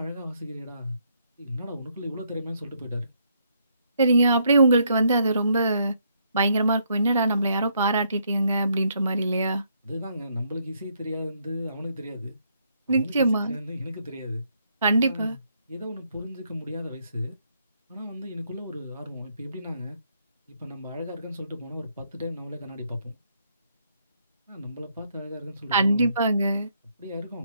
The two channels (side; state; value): both; inverted; correlation -0.72